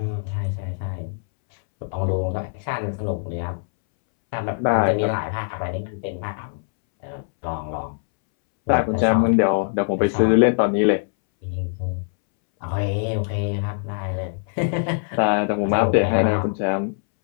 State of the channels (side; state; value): right; silent; 64 dB below the other